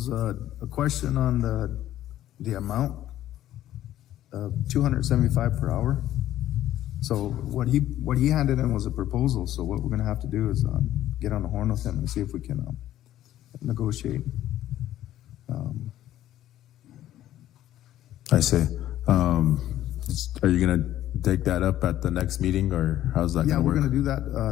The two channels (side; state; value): right; quieter; 13.0 dB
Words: a question on the amount of $275 per hour. So what he handed in was a proposal. So what we're gonna have to do is get on the horn with him and see if we can negotiate. I see. Are you gonna take that up at the next meeting, or how's that Yeah, gonna we're work? gonna do